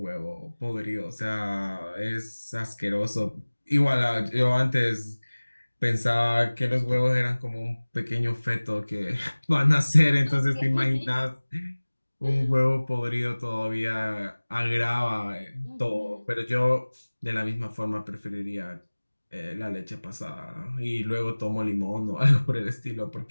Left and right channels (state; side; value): inverted; both; correlation -1.00